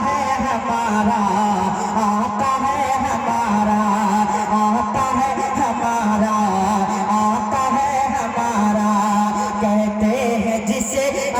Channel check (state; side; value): identical; both; correlation 1.00